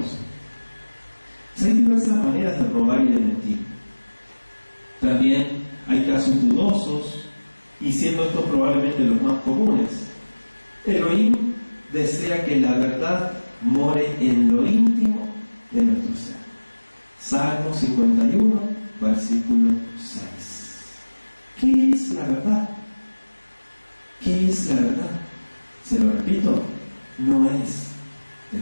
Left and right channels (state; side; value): inverted; both; correlation -1.00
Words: Hay diversas maneras de robar y de mentir. También hay casos dudosos, y siendo estos probablemente los más comunes. Elohim desea que la verdad more en lo íntimo de nuestro ser. Salmo 51, versículo 6. ¿Qué es la verdad? ¿Qué es la verdad? Se lo repito, no es